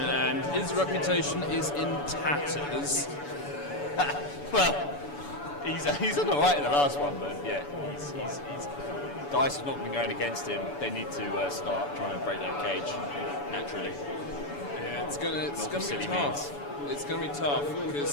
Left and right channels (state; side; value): late; right; 7.0 ms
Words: his reputation is in tatters. Well, he's done all right in the last one, but yeah, he's dice has not been going against him. They need to start trying to break that cage naturally. Yeah, it's gonna be silly tough. It's going to be tough